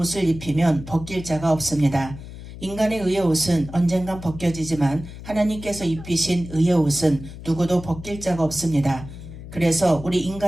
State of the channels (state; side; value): noise; left; hum, 13 dB below the sound